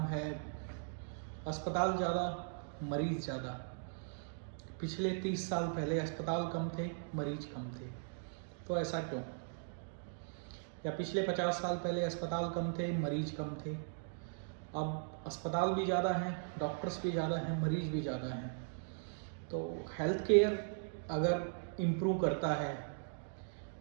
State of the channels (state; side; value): silent; left; digital silence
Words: है अस्पताल ज़्यादा, मरीज ज़्यादा। पिछले 30 साल पहले अस्पताल कम थे, मरीज कम थे, तो ऐसा क्यों? या पिछले 50 साल पहले अस्पताल कम थे, मरीज कम थे, अब अस्पताल भी ज़्यादा हैं, डॉक्टर्स भी ज़्यादा हैं, मरीज भी ज़्यादा हैं। तो हेल्थ केयर अगर इम्प्रूव करता है